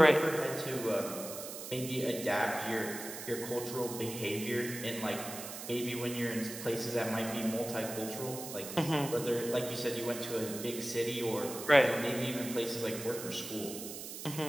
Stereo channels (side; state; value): right; noise; hiss, 9 dB below the sound